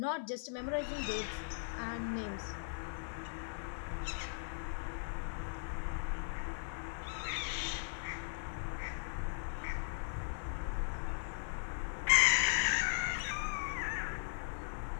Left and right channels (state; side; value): silent; right; 52 dB below the other